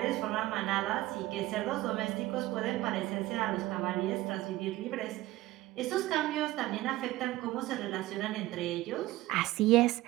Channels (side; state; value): left; quieter; 17.2 dB